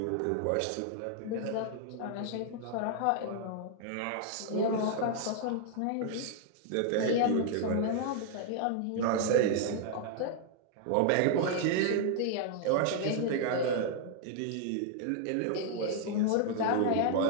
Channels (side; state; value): both; different; correlation -0.01